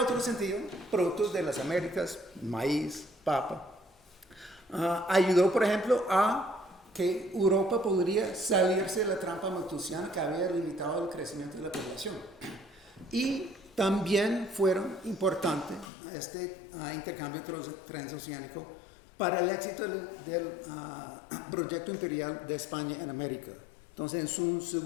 sentido, productos de las Américas, maíz, papa, ayudó, por ejemplo, a que Europa podría salirse de la trampa malthusiana que había limitado el crecimiento de la población. Y también fueron importantes este intercambio transoceánico para el éxito del proyecto imperial de España en América. Entonces, en su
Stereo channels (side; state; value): right; drops out; at 15.9 s